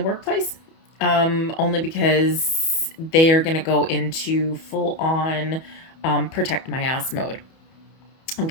workplace, only because they are going to go into full on protect my ass mode.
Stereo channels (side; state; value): right; late; 31 ms